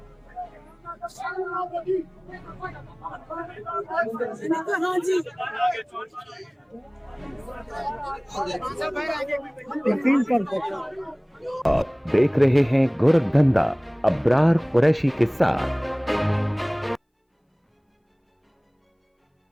हाँ जी आप देख रहे हैं गोरखधंधा अब्रार कुरैशी के साथ।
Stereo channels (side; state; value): both; identical; correlation 1.00